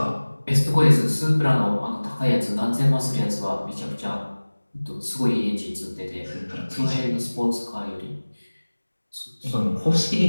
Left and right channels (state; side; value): inverted; both; correlation -1.00